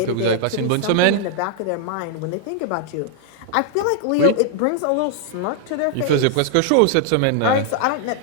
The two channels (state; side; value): different; both; correlation 0.00